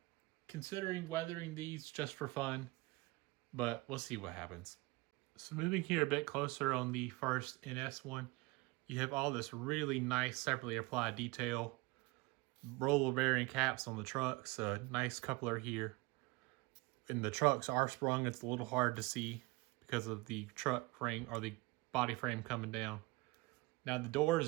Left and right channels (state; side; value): quieter; left; 23.6 dB